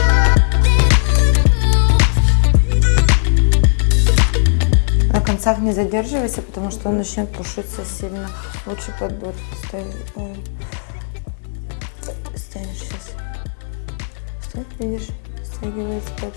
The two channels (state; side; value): silent; right; digital silence